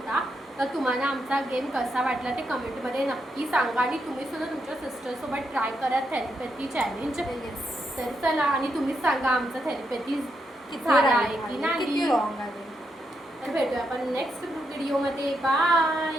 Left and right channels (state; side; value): normal; both; correlation 0.82